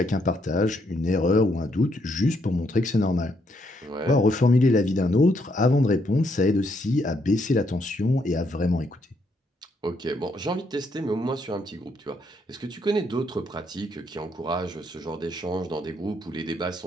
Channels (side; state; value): both; normal; correlation 0.74